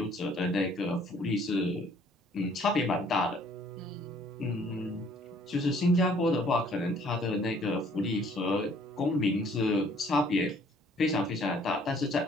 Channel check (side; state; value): both; normal; correlation 0.59